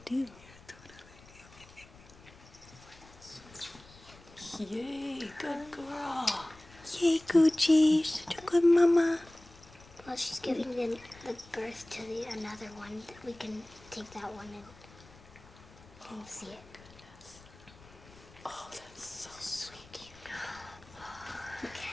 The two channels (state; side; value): noise; left; rumble, 22 dB below the sound